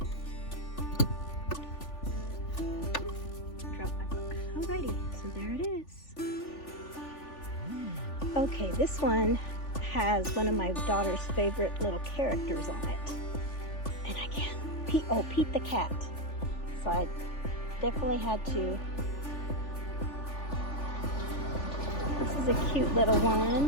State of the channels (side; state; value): right; late; 3.4 ms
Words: Drop my book. Alrighty, so there it is. Okay, this one has one of my daughter's favorite little characters on it. And I can't, Pete the cat. So I definitely had to. This is a cute little